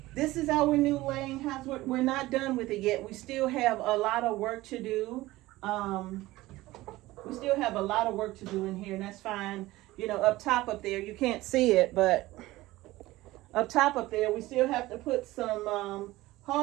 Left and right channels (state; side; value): quieter; left; 18.1 dB